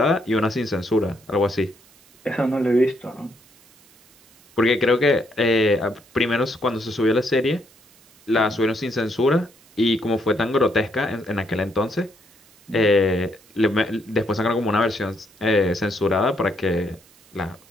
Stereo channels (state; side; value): noise; right; hiss, 29 dB below the sound